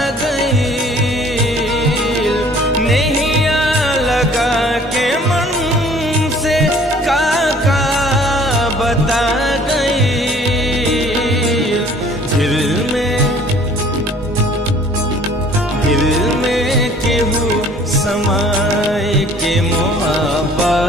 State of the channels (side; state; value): both; normal; correlation 0.54